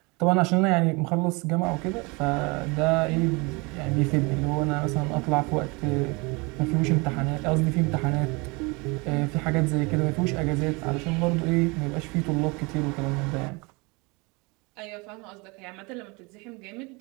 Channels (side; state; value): left; quieter; 27.4 dB